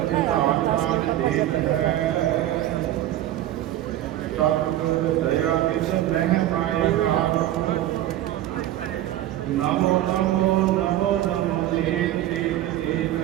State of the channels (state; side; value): quieter; left; 13.5 dB